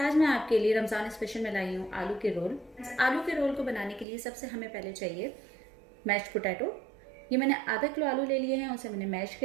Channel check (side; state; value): left; drops out; at 4.0 s